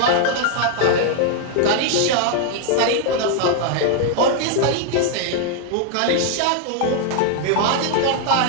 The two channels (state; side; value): different; both; correlation 0.00